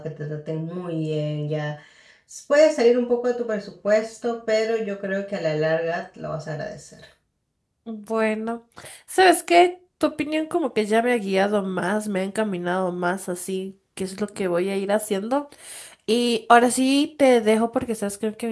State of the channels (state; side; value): identical; both; correlation 1.00